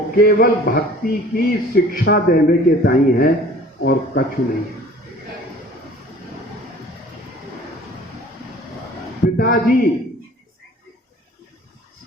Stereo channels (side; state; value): both; normal; correlation 0.48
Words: केवल भक्ति की शिक्षा देने के ताई है और कछु नहीं है। पिताजी